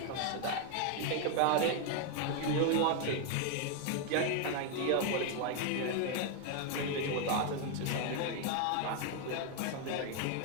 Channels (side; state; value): both; different; correlation 0.01